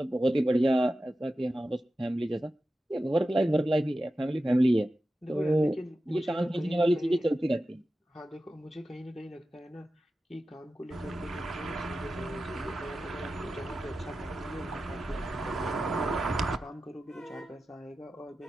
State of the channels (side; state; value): both; normal; correlation 0.93